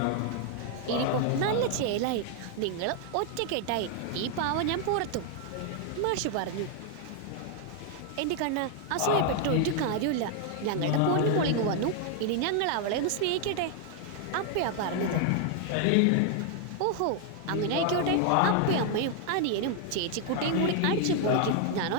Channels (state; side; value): different; both; correlation 0.00